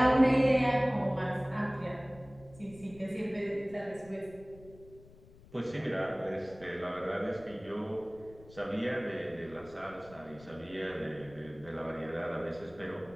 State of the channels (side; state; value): left; noise; rumble, 22 dB below the sound